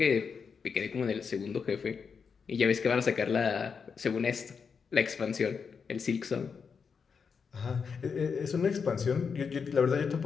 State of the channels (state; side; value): quieter; right; 5.9 dB